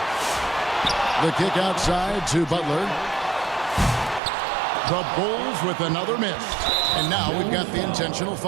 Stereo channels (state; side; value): drops out; left; at 4.2 s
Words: The kick outside to Butler. The Bulls with another miss. And now we've got the intentional